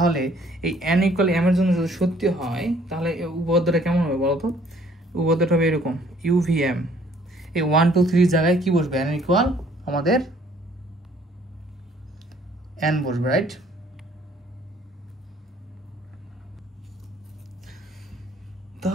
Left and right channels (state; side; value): normal; both; correlation 0.60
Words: এই n ইকুয়াল m এর জন্য যদি সত্যি হয় তাহলে এই উপপাদ্যটা কেমন হবে বলো তো? উপপাদ্যটা হবে এরকম, UVM এই 1 2 3 জায়গায় কি বসবে? n ইকুয়াল আমাদের n বসবে, রাইট?